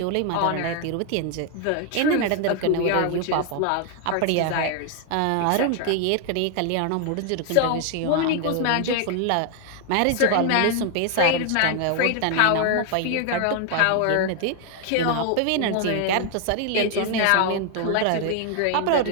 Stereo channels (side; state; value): both; different; correlation 0.00